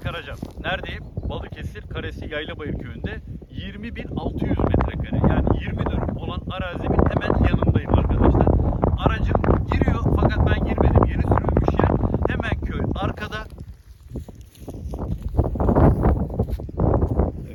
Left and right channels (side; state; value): both; identical; correlation 1.00